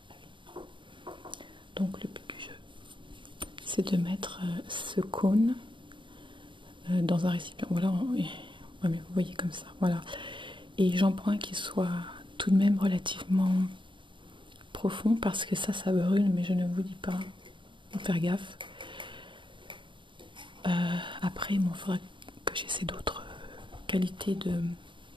Ah oui. Donc le but du jeu, c'est de mettre ce cône dans un récipient. Voilà, ouais, mais vous voyez comme ça, voilà. Et j'en prends un qui soit tout de même relativement profond parce que ça brûle, mais je ne vous dis pas, faut faire gaffe. Après, il faudra que j'essaie d'autres qualités de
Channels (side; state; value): left; late; 0.24 ms